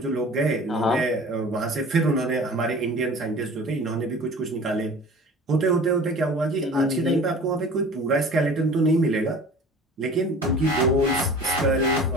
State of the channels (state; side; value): normal; both; correlation 0.42